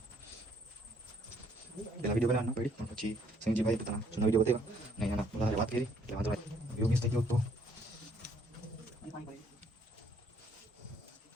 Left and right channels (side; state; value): both; normal; correlation 0.65